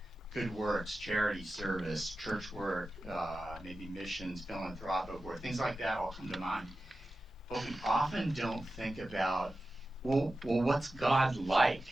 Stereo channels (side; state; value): both; normal; correlation 0.94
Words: good works, charity, service, church work, maybe missions, philanthropic work, things like that all come to mind. But we often don't think about, well, what's God like?